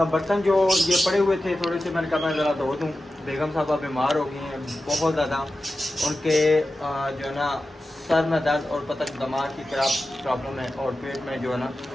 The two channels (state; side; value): normal; both; correlation 0.93